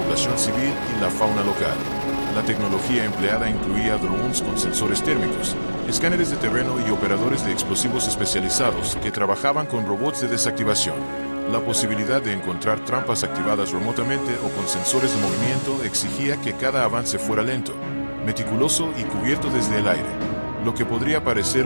civil y la fauna local. La tecnología empleada incluía drones con sensores térmicos, escáneres de terreno y operadores de explosivos especializados que trabajaban con robots de desactivación. La posibilidad de encontrar trampas activadas remotamente o con sensores de movimiento exigía que cada avance fuera lento, meticuloso y cubierto desde el aire. Lo que podría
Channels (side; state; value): both; inverted; correlation -1.00